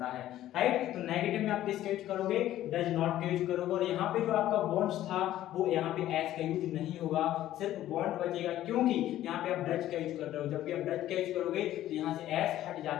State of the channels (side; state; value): right; quieter; 13.4 dB